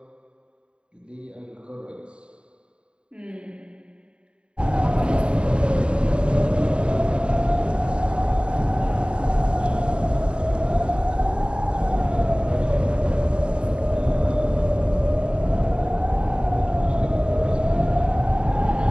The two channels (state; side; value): late; left; 0.053 ms